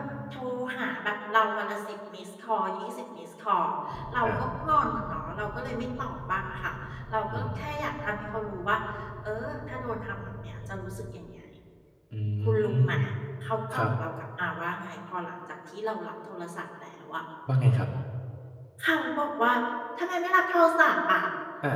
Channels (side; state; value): both; identical; correlation 1.00